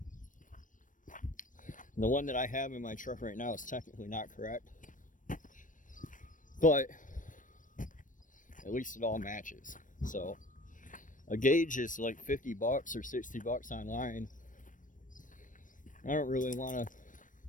And the one that I have in my truck right now is technically not correct, but at least it all matches. So a gauge is like $50 or $60 online. I don't really want to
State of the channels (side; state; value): right; late; 0.38 ms